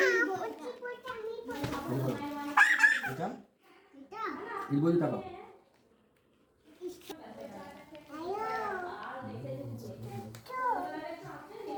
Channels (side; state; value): both; identical; correlation 1.00